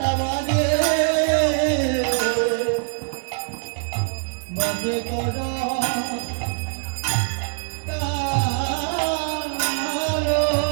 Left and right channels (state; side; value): silent; left; digital silence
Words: বাজে বাজে করো তালো